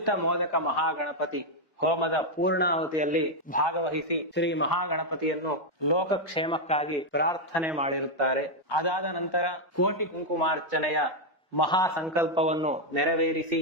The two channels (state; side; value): late; right; 1.2 ms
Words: ಮೋದಕ ಮಹಾಗಣಪತಿ ಹೋಮದ ಪೂರ್ಣಾಹುತಿಯಲ್ಲಿ ಭಾಗವಹಿಸಿ ಶ್ರೀ ಮಹಾಗಣಪತಿಯನ್ನು ಲೋಕಕ್ಷೇಮಕ್ಕಾಗಿ ಪ್ರಾರ್ಥನೆ ಮಾಡಿರುತ್ತಾರೆ. ಅದಾದ ನಂತರ ಕೋಟಿ ಕುಂಕುಮಾರ್ಚನೆಯ ಮಹಾ ಸಂಕಲ್ಪವನ್ನು ನೆರವೇರಿಸಿ